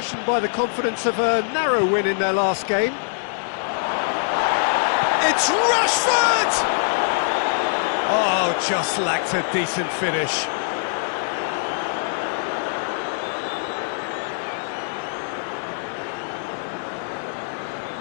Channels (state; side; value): silent; right; digital silence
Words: by the confidence of a narrow win in their last game. It's Rashford! Oh, just lacked a decent finish.